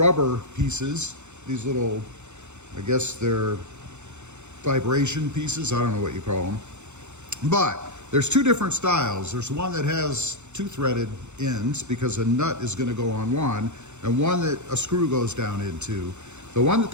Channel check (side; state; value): left; late; 0.83 ms